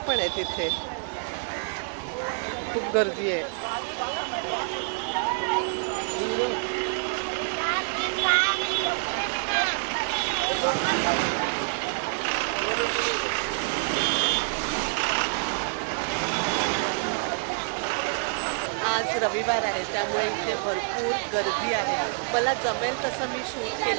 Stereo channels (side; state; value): left; silent; 60 dB below the other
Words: आहेत इथे. खूप गर्दी आहे. आज रविवार आहे, त्यामुळे इथे भरपूर गर्दी आहे. मला जमेल तसं मी शूट